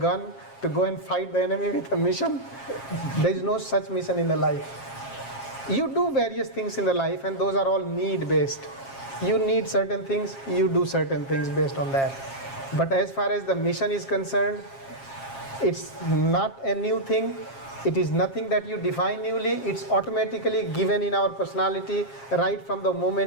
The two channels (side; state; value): right; late; 7.4 ms